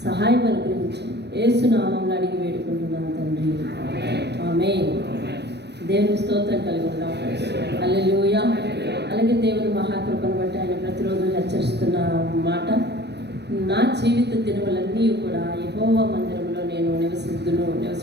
సహాయం అనుగ్రహించండి. యేసు నామంలో అడిగి వేడుకుంటున్నాను తండ్రి, ఆమేన్. దేవుని స్తోత్రం కలుగుతాం. హల్లెలూయా. అలాగే దేవుని మహాకృపను బట్టి ఆయన ప్రతిరోజు హెచ్చరిస్తున్న మాట, నా జీవిత దినములన్నీ కూడా యెహోవా మందిరంలో నేను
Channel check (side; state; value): left; late; 0.49 ms